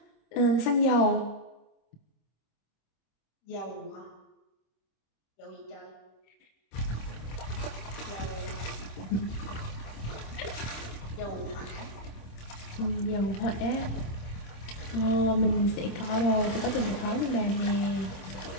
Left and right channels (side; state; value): right; late; 26 ms